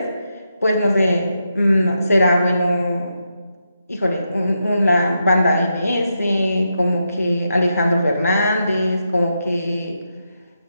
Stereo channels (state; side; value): inverted; both; correlation -0.85